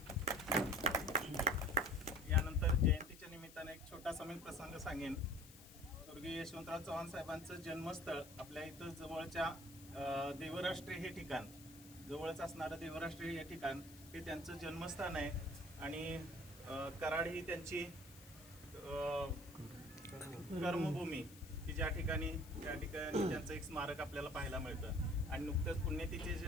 यानंतर जयंतीच्या निमित्ताने एक छोटासा मी प्रसंग सांगेन. स्वर्गीय यशवंतराव चव्हाण साहेबांचं जन्मस्थळ आपल्या इथं जवळच्या देवराष्ट्रे हे ठिकाण, जवळच असणारं देवराष्ट्रे हे ठिकाण हे त्यांचं जन्मस्थान आहे. आणि कराड ही त्यांची कर्मभूमी की त्या ठिकाणी त्यांचं एक स्मारक आपल्याला पाहायला मिळतं. आणि नुकतंच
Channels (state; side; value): noise; left; hiss, 19 dB below the sound